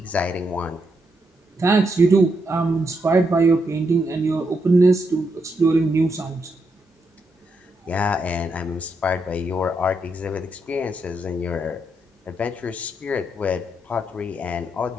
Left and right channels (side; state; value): both; normal; correlation 0.80